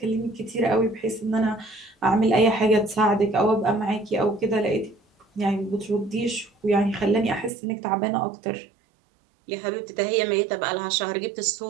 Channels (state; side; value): drops out; left; at 7.5 s